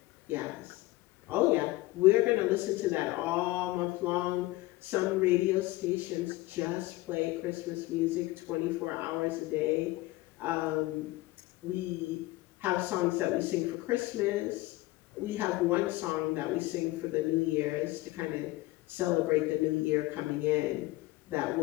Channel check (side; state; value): right; quieter; 19.2 dB